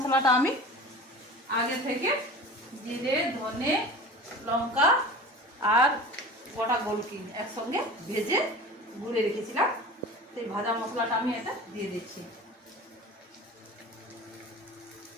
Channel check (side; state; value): both; normal; correlation 0.37